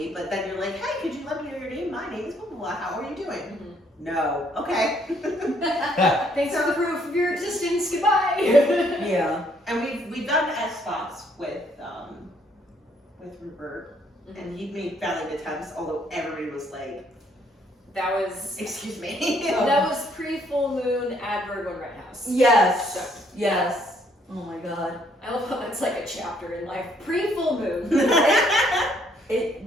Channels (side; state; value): both; normal; correlation 0.67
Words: but then you're like, hey, could you let me know your name? My name is blah blah blah. How are you doing? Mm-hmm. No. Okay. Thanks for the proof of your existence. Goodbye. Yeah. And we've done SBox with Rupert, and he made valiant attempts, although everybody was like, That was excuse me. that was pre-full moon at Virgo Red House. Yes. Yes. Oh my god. I love how that's like a chapter in life. Pre-full moon. It